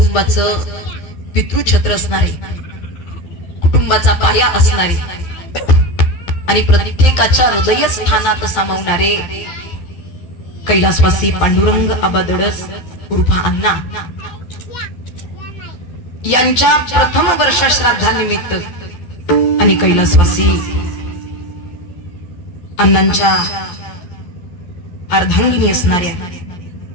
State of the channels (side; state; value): right; late; 11 ms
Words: पितृछत्र असणारे, कुटुंबाचा पाया असणारे आणि प्रत्येकाच्या हृदय स्थानात सामावणारे कैलासवासी पांडुरंग आबा धडस उर्फा अण्णा यांच्या प्रथम वर्ष श्राद्धानिमित्त आणि कैलासवासी अण्णांच्या अर्धांगिनी असणाऱ्या